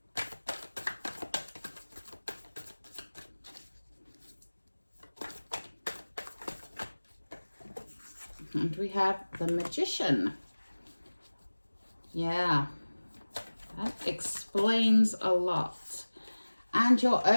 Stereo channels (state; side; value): inverted; both; correlation -1.00